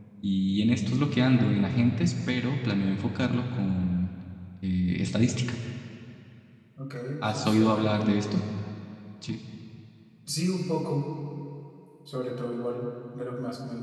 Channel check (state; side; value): identical; both; correlation 1.00